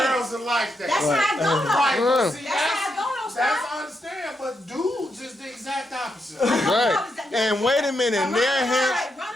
girls are like that. That's how I go though. Right, but see, That's how I go though, that's Scott. I understand, but dudes is the exact opposite. Right. And wait a minute, Run their around, hands,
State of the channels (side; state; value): both; normal; correlation 0.82